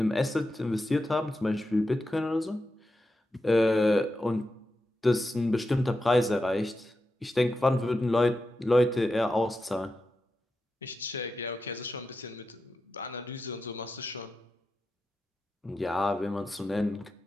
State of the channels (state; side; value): normal; both; correlation 0.89